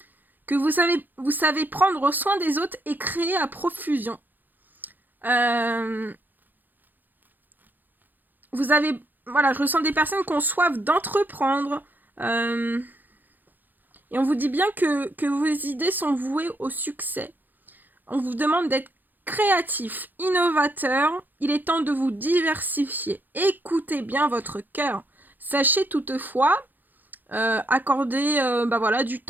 Que vous savez prendre soin des autres et créer à profusion. Voilà, je ressens des personnes qui ont soif d'entreprendre. Et on vous dit bien que vos idées sont vouées au succès. On vous demande d'être créatif, innovateur. Il est temps de vous diversifier. Écoutez bien votre cœur. Sachez toutefois accorder voilà, du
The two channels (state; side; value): late; left; 0.087 ms